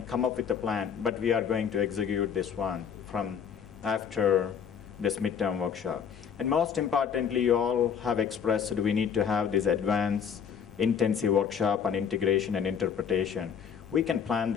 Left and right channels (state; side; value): quieter; right; 7.5 dB